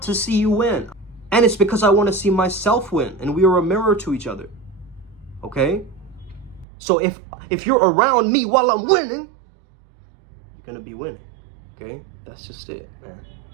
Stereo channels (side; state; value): left; drops out; at 6.7 s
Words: to see you win. And it's because I want to see myself win, and we are a mirror to each other. Okay? So if you're around me while I'm winning, you're going to be winning. Okay? That's just it, man.